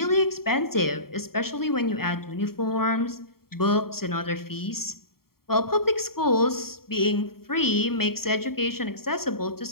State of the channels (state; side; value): late; right; 0.93 ms